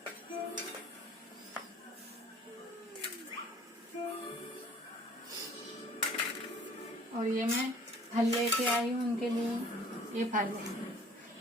और ये मैं फल लेके आई हूँ उनके लिए, ये फल है,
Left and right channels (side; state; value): both; normal; correlation 0.52